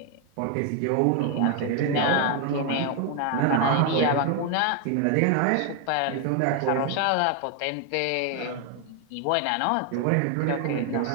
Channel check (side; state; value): both; different; correlation 0.01